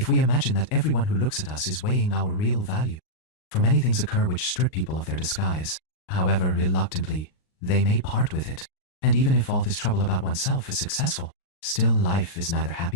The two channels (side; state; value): right; late; 39 ms